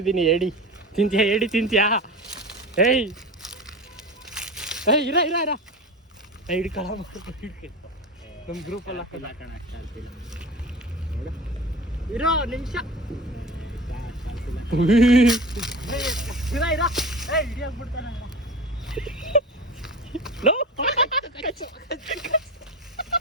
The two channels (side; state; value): both; normal; correlation 0.32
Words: ಏಡಿ ತಿಂತೀಯಾ? ಏಡಿ ತಿಂತೀಯಾ? ಏಯ್ ಏಯ್ ಇರ ಇರ ಇರ ಹಿಡ್ಕೊಳ ನಮ್ಮ ಗ್ರೂಪಲ್ಲಿ ಇರೋ ನಿಮಿಷ